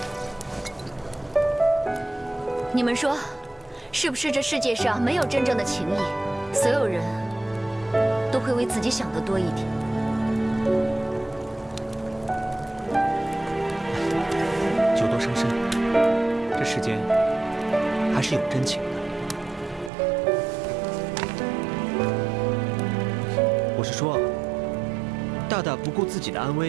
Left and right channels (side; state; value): left; drops out; at 19.9 s